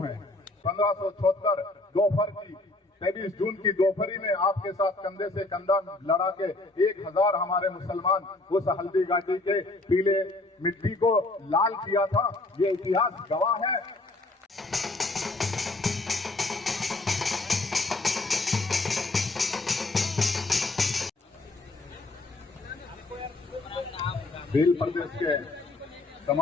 है। 1576 दोपहर की 23 जून की दोपहरी में आपके साथ कंधे से कंधा लड़ा के 1000 हमारे मुसलमान उस हल्दी घाटी के पीले मिट्टी को लाल किया था। ये इतिहास गवाह है। भील प्रदेश के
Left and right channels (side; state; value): right; quieter; 3.0 dB